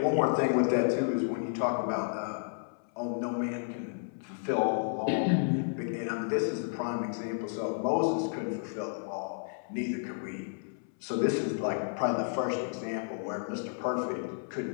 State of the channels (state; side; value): silent; right; 57 dB below the other